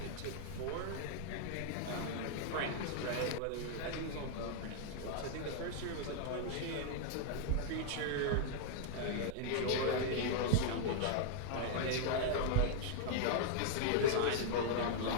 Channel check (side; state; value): both; different; correlation -0.01